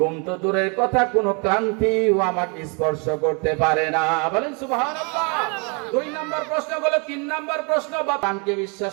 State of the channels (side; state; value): left; quieter; 34.1 dB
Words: তো দূরের কথা, কোনো ক্লান্তিও আমাকে স্পর্শ করতে পারে না। বলেন সুবহানাল্লাহ। 2 নম্বর প্রশ্ন হলো, 3 নম্বর প্রশ্ন, বাবাকে